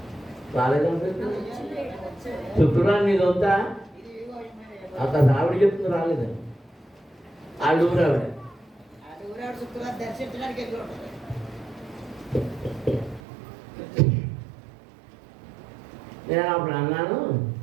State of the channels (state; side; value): drops out; left; at 13.2 s